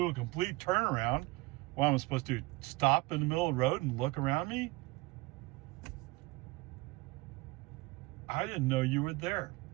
a complete turnaround. Well, I'm supposed to stop in the middle of the road and look around me. I didn't know you were there.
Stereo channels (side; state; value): left; quieter; 22.6 dB